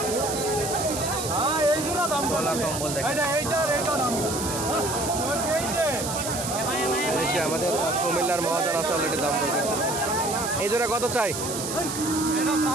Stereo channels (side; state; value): right; noise; hiss, 5 dB below the sound